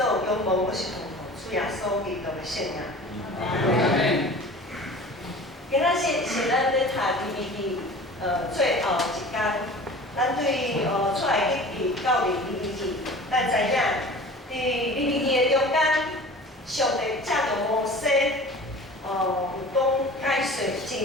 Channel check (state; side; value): normal; both; correlation 0.41